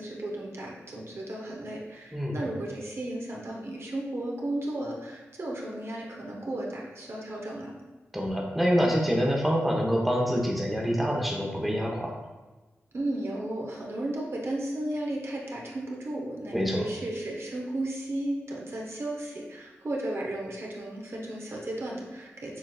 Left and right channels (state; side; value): normal; both; correlation 0.91